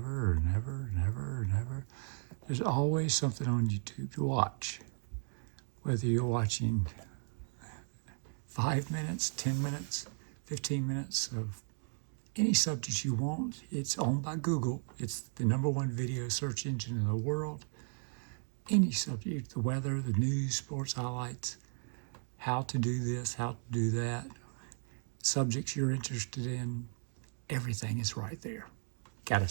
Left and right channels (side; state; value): left; silent; 54 dB below the other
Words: and ever and ever and ever. There's always something on YouTube to watch. Whether you're watching 5 minutes, 10 minutes, 15 minutes of any subject you want, it's owned by Google. It's the number one video search engine in the world. Any subject, the weather, the news, sports highlights, how to do this, how to do that, subjects you're interested in, everything is right there. Gotta